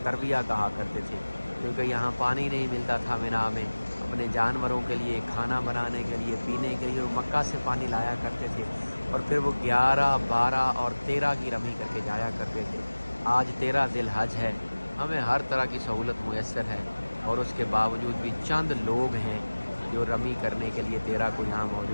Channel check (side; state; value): both; inverted; correlation -1.00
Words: ترویہ کہا کرتے تھے، کیونکہ یہاں پانی نہیں ملتا تھا مینا میں اپنے جانوروں کے لیے، کھانا بنانے کے لیے، پینے کے لیے وہ مکہ سے پانی لایا کرتے تھے اور پھر وہ 11، 12 اور 13 کی رمی کر کے جایا کرتے تھے۔ آج 13 ذی الحج ہے، ہمیں ہر طرح کی سہولت میسر ہے اور اس کے باوجود بھی چند لوگ ہیں جو رمی کرنے کے لیے 13 کو یہاں